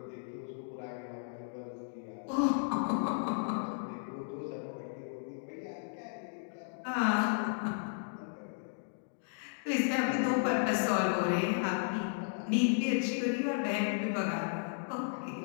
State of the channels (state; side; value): silent; right; digital silence